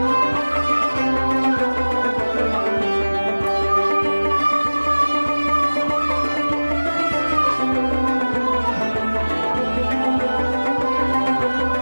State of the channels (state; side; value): inverted; both; correlation -1.00